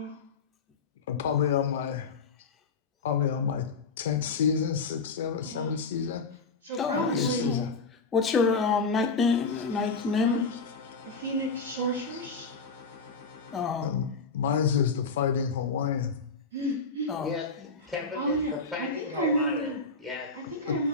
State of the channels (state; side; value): quieter; right; 4.3 dB